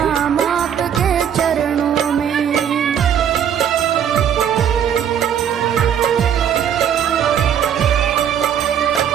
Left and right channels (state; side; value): quieter; left; 8.9 dB